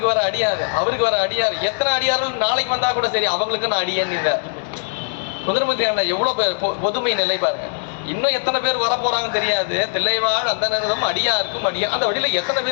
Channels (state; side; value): silent; right; digital silence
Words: வர அடியாரு, அவருக்கு வர அடியாரு, எத்தனை அடியார்கள் நாளைக்கு வந்தா கூட சரி அவங்களுக்கு நான் அடியேன்னு. சுந்தரமூர்த்தி நாயனார் எவ்வளவு பொதுமை நிலை பாருங்க. இன்னும் எத்தனை பேர் வர போறாங்கன்னு தெரியாது. தில்லைவாழ் அந்த நேரம் அடியாருக்கும் அடியா, அந்த வழியில எத்தனை